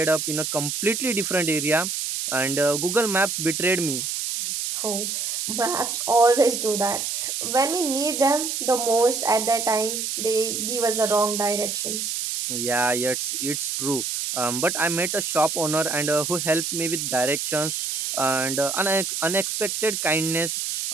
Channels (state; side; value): noise; right; hiss, 2 dB below the sound